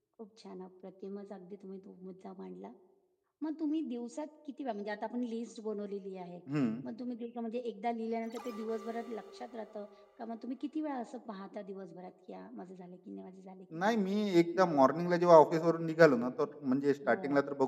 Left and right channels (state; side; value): identical; both; correlation 1.00